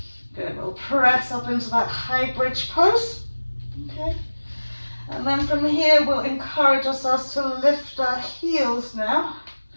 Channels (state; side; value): inverted; both; correlation -1.00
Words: Good, we'll press up into that high bridge pose. Okay. And then from here, we'll encourage ourselves to lift our heels now